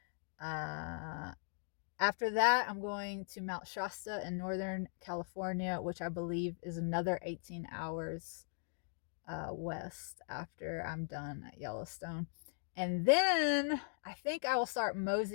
After that, I'm going to Mount Shasta in Northern California, which I believe is another 18 hours west after I'm done at Yellowstone. And then I think I will start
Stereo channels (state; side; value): silent; right; digital silence